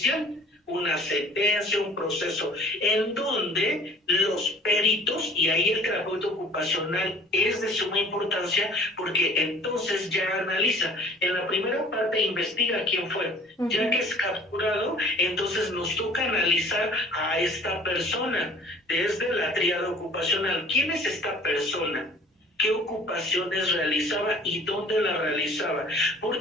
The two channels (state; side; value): normal; both; correlation 0.50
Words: una sentencia, un proceso, en donde los peritos, y ahí el terapeuta ocupacional es de suma importancia, porque entonces ya analiza. En la primera parte investiga quién fue. Uh-huh. Ya que es capturado, entonces nos toca analizar a esta persona desde la tríada ocupacional. ¿Quién es esta persona? ¿Qué ocupaciones realizaba y dónde la realizaba? ¿Por